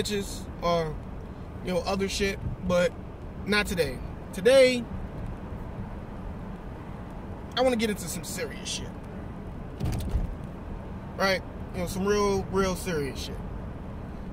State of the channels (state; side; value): identical; both; correlation 1.00